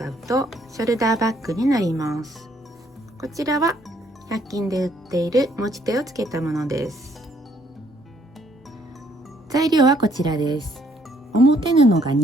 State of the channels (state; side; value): normal; both; correlation 0.67